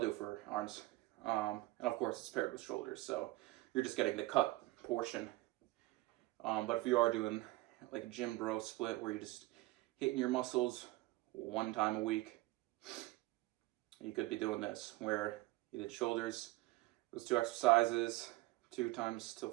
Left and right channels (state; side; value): quieter; left; 19.9 dB